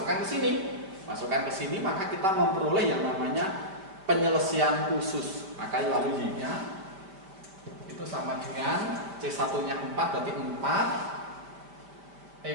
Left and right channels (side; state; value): left; late; 5.2 ms